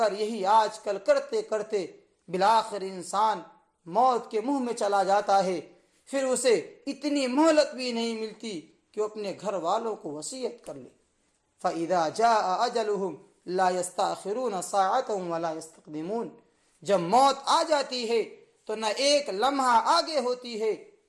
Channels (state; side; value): identical; both; correlation 1.00